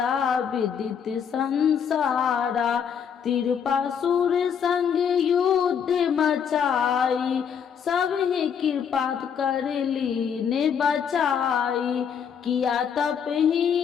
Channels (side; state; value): right; quieter; 7.5 dB